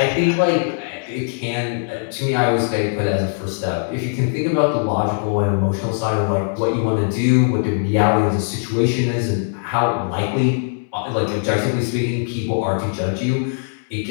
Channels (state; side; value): silent; right; 66 dB below the other